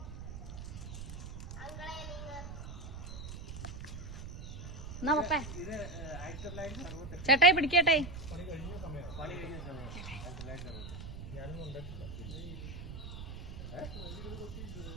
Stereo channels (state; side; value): noise; right; rumble, 9 dB below the sound